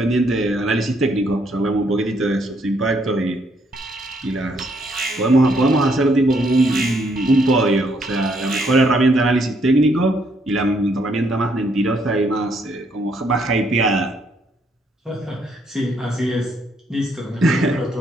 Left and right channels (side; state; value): both; normal; correlation 0.71